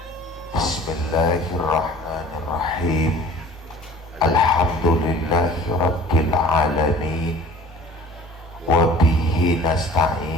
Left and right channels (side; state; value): both; normal; correlation 0.47